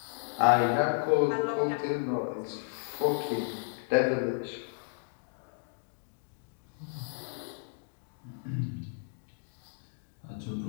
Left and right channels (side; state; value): right; silent; digital silence